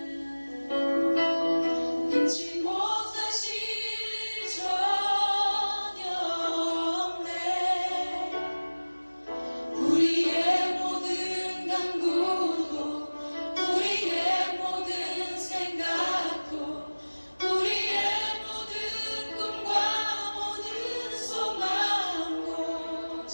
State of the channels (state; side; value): inverted; both; correlation -1.00